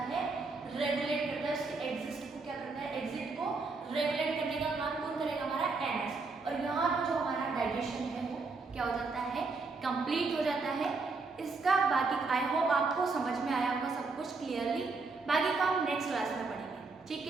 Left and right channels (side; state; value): left; quieter; 4.0 dB